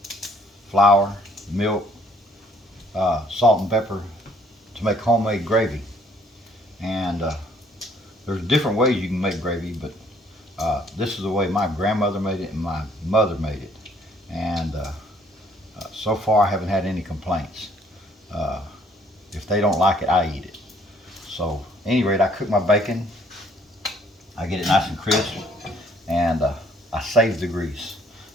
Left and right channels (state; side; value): normal; both; correlation 0.62